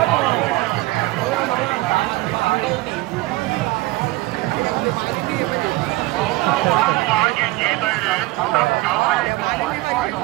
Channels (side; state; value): left; quieter; 19.6 dB